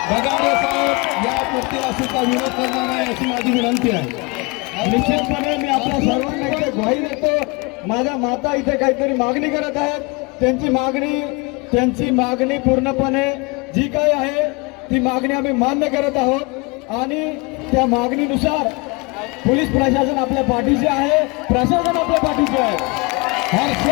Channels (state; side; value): quieter; right; 28.0 dB